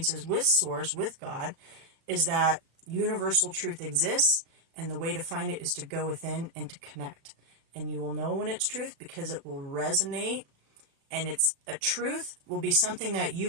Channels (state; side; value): late; left; 36 ms